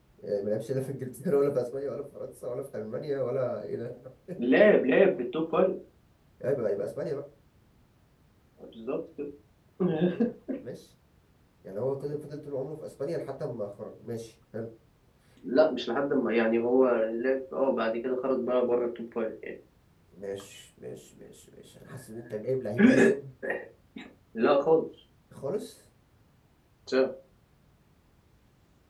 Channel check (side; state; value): both; identical; correlation 1.00